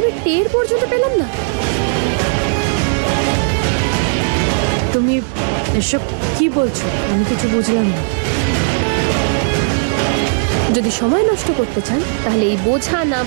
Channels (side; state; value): left; silent; digital silence